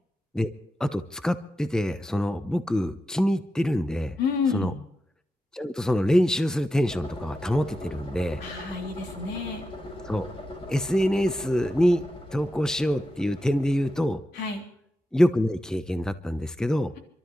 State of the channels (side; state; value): both; normal; correlation 0.90